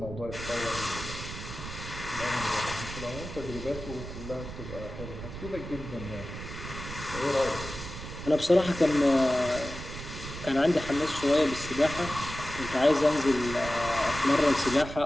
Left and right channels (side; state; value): right; noise; rumble, 10 dB below the sound